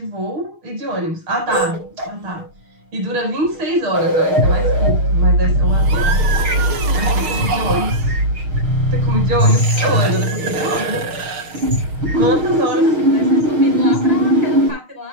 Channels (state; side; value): late; left; 6.4 ms